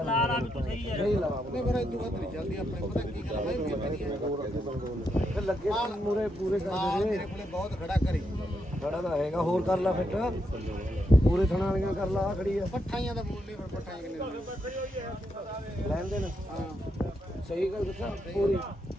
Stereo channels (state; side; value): normal; both; correlation 0.81